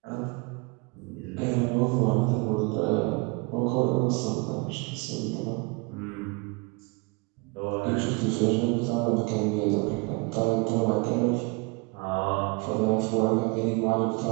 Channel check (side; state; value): left; quieter; 28.6 dB